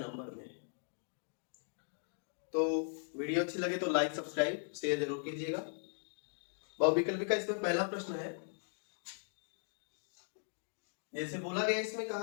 में। तो वीडियो अच्छी लगे तो लाइक, सब्सक्राइब, शेयर जरूर कीजिएगा। बहुविकल्पी का इसमें पहला प्रश्न है, जैसे बोला गया इसमें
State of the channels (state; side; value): silent; right; digital silence